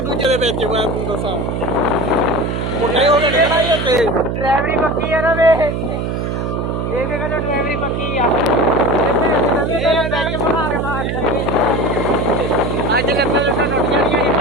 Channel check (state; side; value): noise; right; hum, 2 dB below the sound